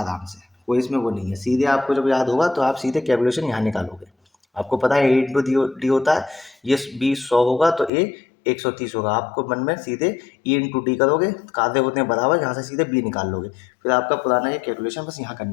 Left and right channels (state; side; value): drops out; right; at 7.9 s